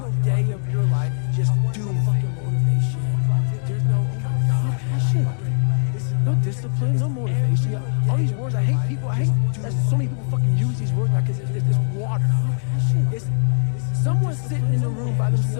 day of your life just doing fucking motivation. There's no, oh my God, passion. No discipline, no motivation. All these words, I hate people. I hate that so many people fucking use these words because it's water. It's someone sitting in the room by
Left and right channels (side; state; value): right; silent; digital silence